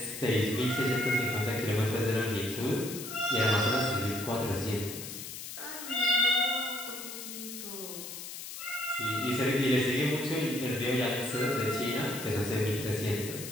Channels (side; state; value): left; noise; hiss, 9 dB below the sound